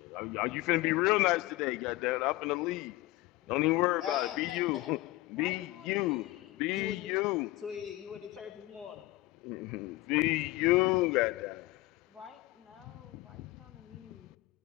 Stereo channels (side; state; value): right; quieter; 18.9 dB